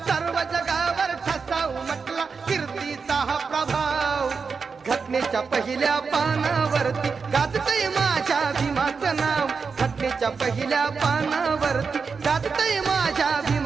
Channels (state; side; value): quieter; left; 5.2 dB